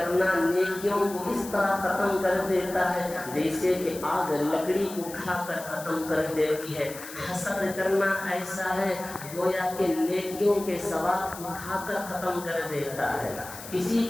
نیکیوں کو اس طرح ختم کر دیتا ہے جیسے کہ آگ لکڑی کو کھا کر ختم کر دیتی ہے۔ حسد کرنا ایسا ہے گویا کہ نیکیوں کے ثواب کو کھا کر ختم کر دیتا ہے۔ کسی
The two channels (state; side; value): noise; left; hiss, 13 dB below the sound